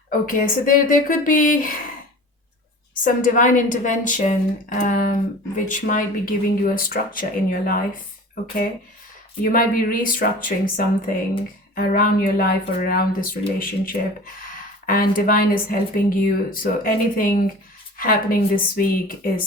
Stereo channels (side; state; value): both; normal; correlation 0.39